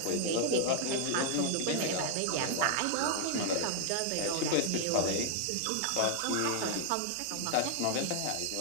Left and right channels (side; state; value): both; different; correlation 0.00